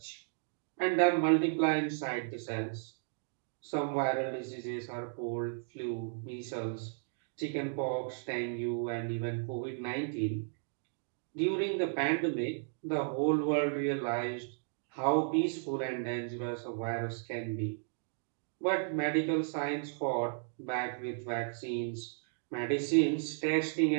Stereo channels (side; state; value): left; silent; digital silence